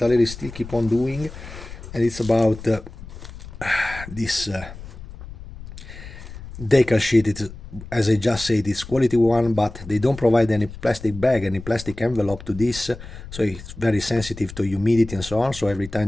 still keep on doing, and it's about this decal sheet. It's, as I just said, it's quality one, but they don't provide any plastic bag, any plastic envelope to this, so it's very sensitive to humidity and so on. So every time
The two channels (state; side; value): noise; left; rumble, 14 dB below the sound